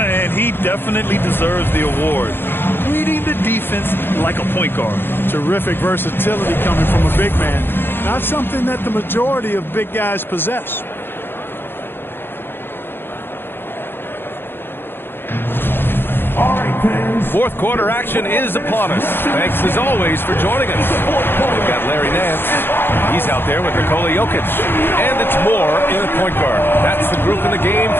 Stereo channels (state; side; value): late; right; 0.10 ms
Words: he definitely deserves the award. Reading the defense like a point guard. Terrific versatility coming from a big man. Not something that the majority of big guys possess. All right, fans. Fourth quarter action is upon us. Thanks as always for joining us. We've got Larry Nance. He's out there with Nikola Jokic. And it's Moore in at point guard. That's the group in the game